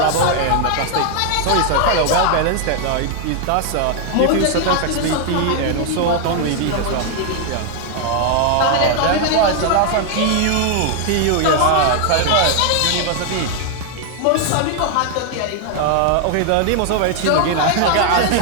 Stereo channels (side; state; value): both; different; correlation 0.00